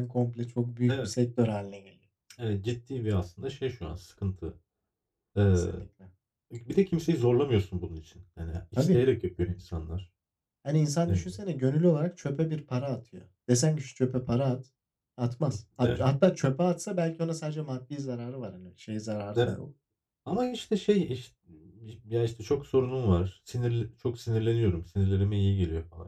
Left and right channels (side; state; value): both; identical; correlation 1.00